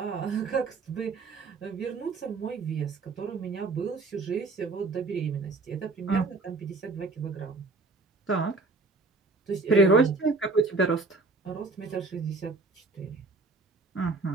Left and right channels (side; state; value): left; quieter; 3.7 dB